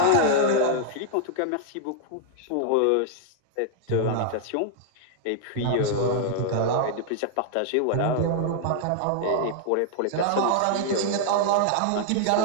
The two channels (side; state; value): both; different; correlation -0.01